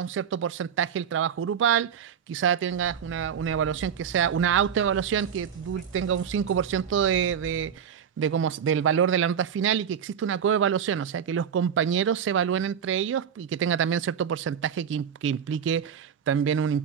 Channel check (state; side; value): quieter; left; 8.0 dB